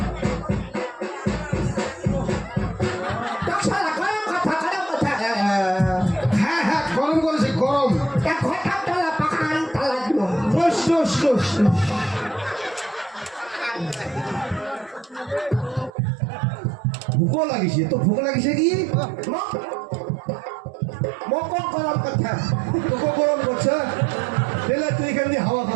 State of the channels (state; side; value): drops out; left; at 15.9 s